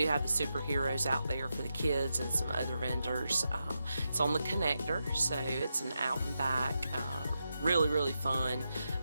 have the superheroes out there for the kids and some other vendors. It's on the connector, so it's an out and back, really fun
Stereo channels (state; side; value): inverted; both; correlation -0.87